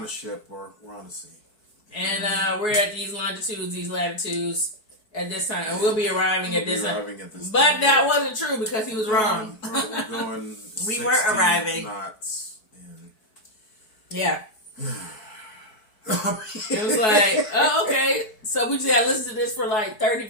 the ship. We're on the sea. And we're at these longitudes, these latitudes at this time. And we'll be arriving at this time. But that wasn't true because he was wrong. We're going we were arriving. Knots. Yeah. It was like, oh, okay. So we just had to listen to this for like 30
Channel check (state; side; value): late; right; 4.7 ms